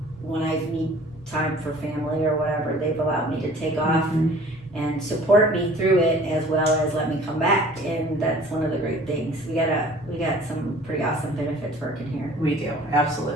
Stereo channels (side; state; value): both; normal; correlation 0.49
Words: I need time for family or whatever, they've allowed me to take off. And support me through it as well as let me come back, and that's one of the great things. We got some pretty awesome benefits working here. We do,